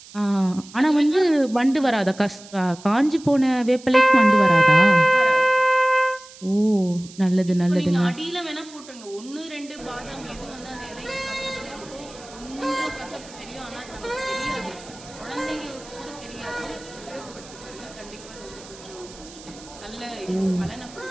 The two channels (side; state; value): right; noise; hiss, 19 dB below the sound